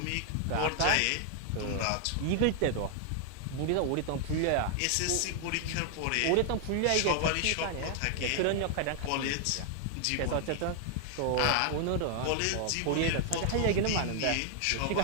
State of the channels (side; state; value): both; different; correlation 0.00